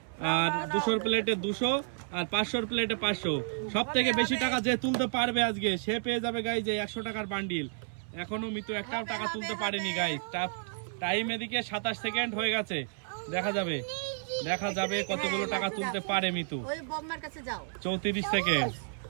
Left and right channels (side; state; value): left; silent; 56 dB below the other